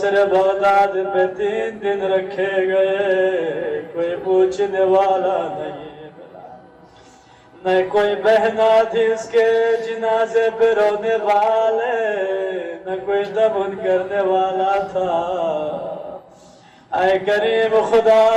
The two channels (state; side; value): identical; both; correlation 1.00